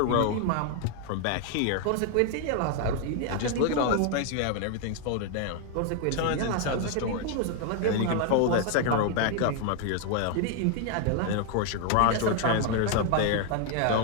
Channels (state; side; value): different; both; correlation 0.00